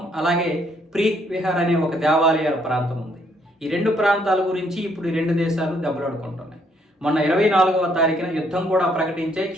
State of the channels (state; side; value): normal; both; correlation 0.69